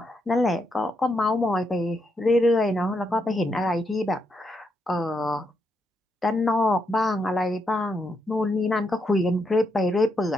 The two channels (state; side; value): normal; both; correlation 0.80